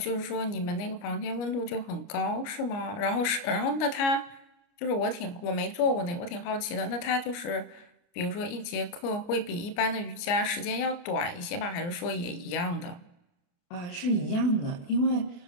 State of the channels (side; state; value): right; late; 29 ms